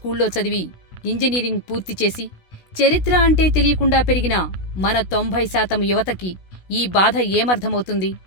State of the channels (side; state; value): right; late; 16 ms